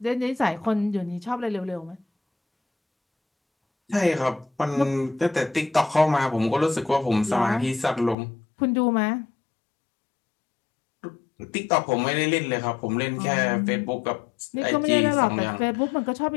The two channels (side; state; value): right; drops out; at 8.2 s